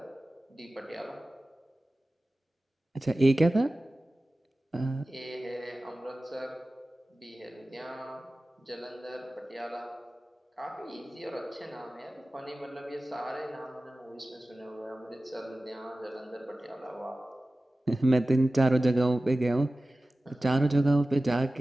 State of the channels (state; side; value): normal; both; correlation 0.96